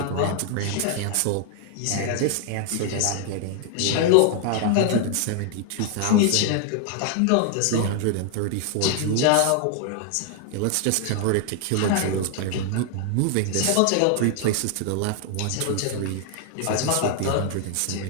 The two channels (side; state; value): both; different; correlation 0.00